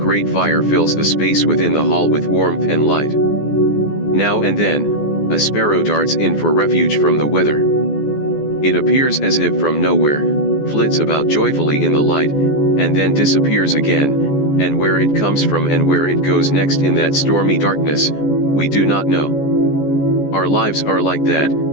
fire fills the space within the hall with warmth and light. Now and then, a sparrow darts in for refuge from the weather. It appears as if from nowhere, flits about joyfully in the light, and then disappears again, and where it comes from and where it goes next in that stormy darkness, we do not know. Our lives are like that,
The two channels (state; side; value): late; right; 14 ms